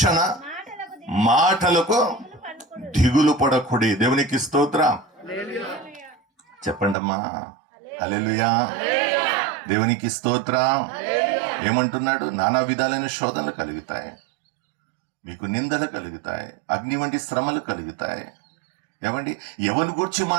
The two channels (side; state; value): left; drops out; at 7.0 s